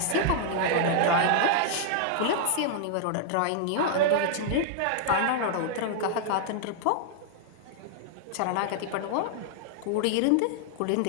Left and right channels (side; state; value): both; different; correlation -0.01